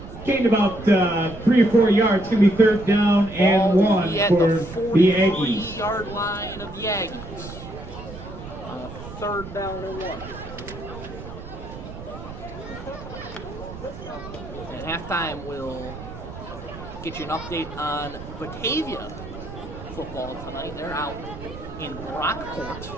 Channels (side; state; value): right; noise; rumble, 12 dB below the sound